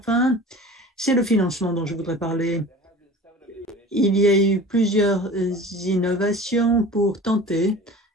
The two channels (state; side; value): normal; both; correlation 0.40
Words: c'est le financement dont je voudrais parler. Il y a eu plusieurs innovations pour tenter